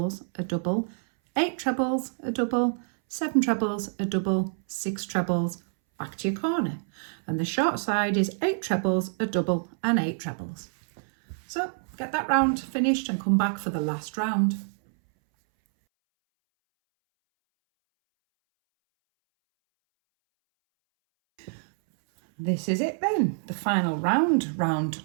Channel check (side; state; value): left; silent; 60 dB below the other